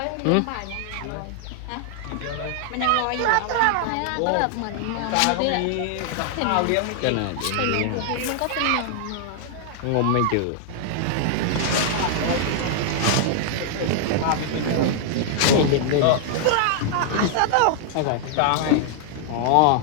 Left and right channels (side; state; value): both; different; correlation 0.00